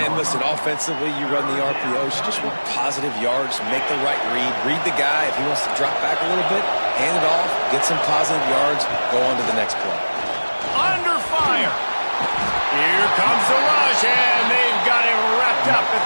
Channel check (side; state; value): both; inverted; correlation -1.00